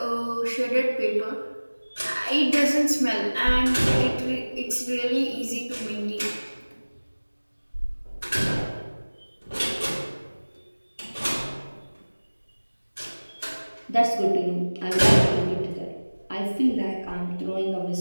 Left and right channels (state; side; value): inverted; both; correlation -1.00